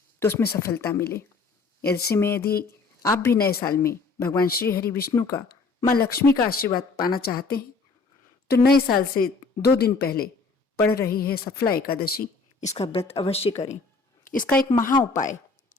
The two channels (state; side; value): quieter; right; 4.2 dB